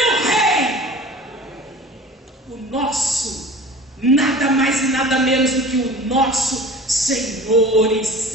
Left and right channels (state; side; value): normal; both; correlation 0.41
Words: rei. O nosso, nada mais e nada menos do que o nosso Senhor e